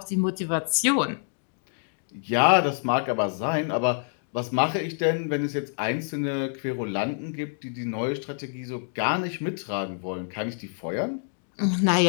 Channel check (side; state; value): right; silent; digital silence